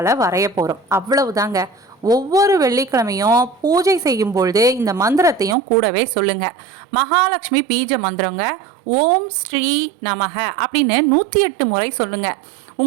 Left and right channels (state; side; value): drops out; left; at 5.6 s